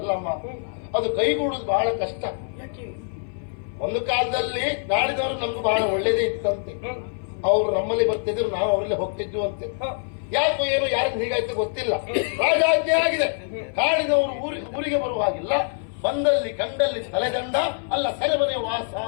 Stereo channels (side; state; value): right; silent; 58 dB below the other